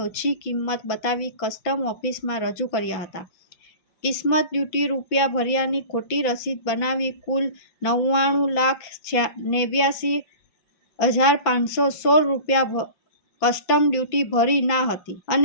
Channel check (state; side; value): late; right; 5.8 ms